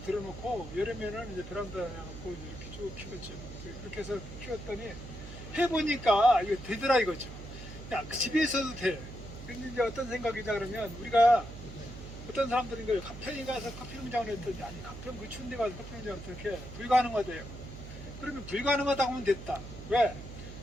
여름에는 이제 베란다에 놓고 이렇게 쭉 키웠죠. 그렇게 해서 키웠더니 해보니까 이거 되더라 이거죠. 야, 그 집에 있어도 돼. 근데 이제 어떤 생각이냐 그러면 우리가 어떤 사람들은 거예요. 가평에 가서 커피 농장을 했더니 아니 가평 그 추운 데 가서 커피 농장을 어떻게 불가능하대요. 그러면 불가능하다고 하면 됐다. 왜?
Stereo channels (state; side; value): noise; right; hum, 12 dB below the sound